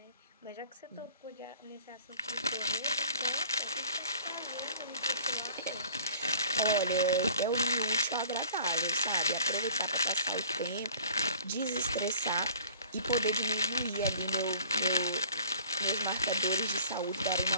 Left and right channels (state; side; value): inverted; both; correlation -0.50